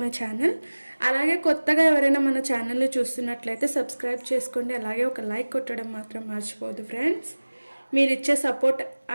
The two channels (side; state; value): both; inverted; correlation -1.00